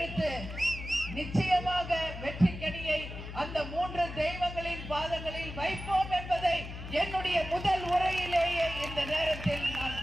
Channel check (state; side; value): noise; left; hum, 9 dB below the sound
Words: நிச்சயமாக வெற்றி கனியை அந்த 3 தெய்வங்களின் பாதங்களில் வைப்போம் என்பதை என்னுடைய முதல் உரையிலேயே இந்த நேரத்தில் நான்